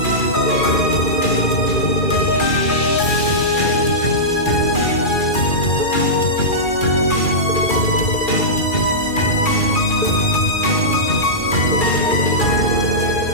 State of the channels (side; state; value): right; late; 2.4 ms